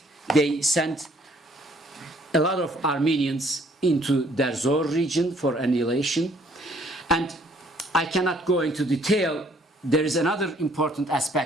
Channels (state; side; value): normal; both; correlation 0.62